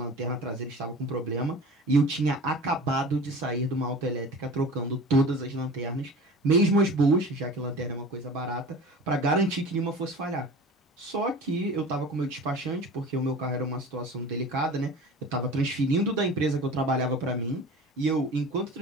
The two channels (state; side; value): normal; both; correlation 0.38